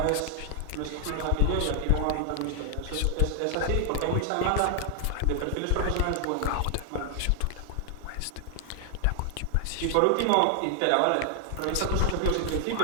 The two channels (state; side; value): different; both; correlation 0.00